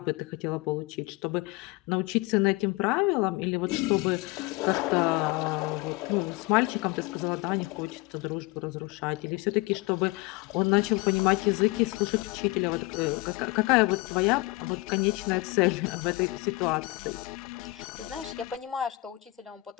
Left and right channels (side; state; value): right; quieter; 21.7 dB